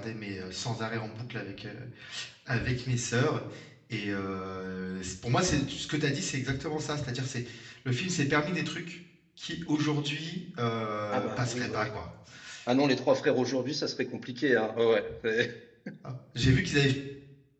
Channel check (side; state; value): both; identical; correlation 1.00